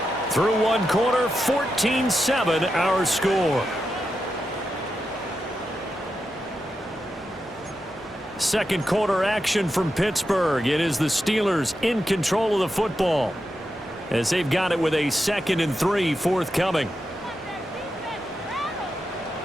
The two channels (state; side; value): normal; both; correlation 0.88